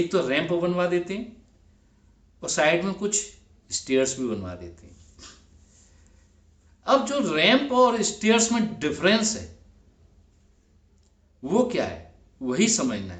तो रैंप बनवा देते हैं और साइड में कुछ स्टेयर्स भी बनवा देते हैं। अब जो रैंप और स्टेयर्स में डिफरेंस है वो क्या है, वही समझना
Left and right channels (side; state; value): both; identical; correlation 1.00